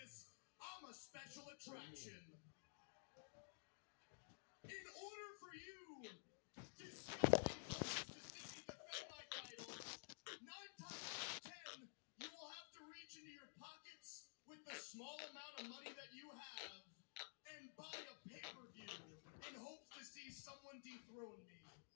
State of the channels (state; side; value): silent; right; digital silence